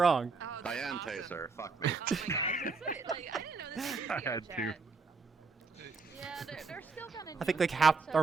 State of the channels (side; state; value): left; quieter; 4.5 dB